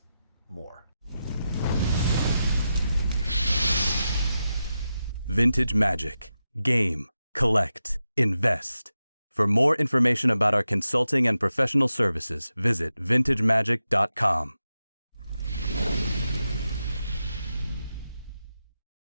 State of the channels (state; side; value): inverted; both; correlation -0.90